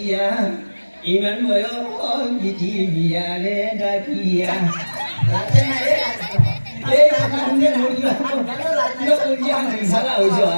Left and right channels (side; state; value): both; inverted; correlation -1.00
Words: ইমান বয়স বিটি বিয়ারে ডাকিয়া এই কারণে মরিয়া সারা হইছে